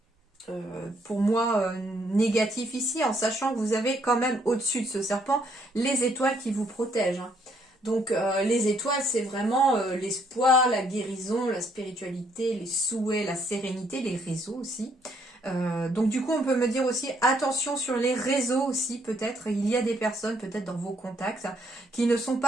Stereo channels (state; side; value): normal; both; correlation 0.70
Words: pour moi, négatif ici, en sachant que vous avez quand même au-dessus de ce serpent les étoiles qui vous protègent. Hein. Donc les étoiles, c'est vraiment l'espoir, la guérison, la spiritualité, les souhaits, la sérénité, les réseaux aussi. Donc du coup, on peut me dire aussi, attention sur les réseaux aussi, peut-être. Il y a des personnes, peut-être dans vos contacts, qui ne sont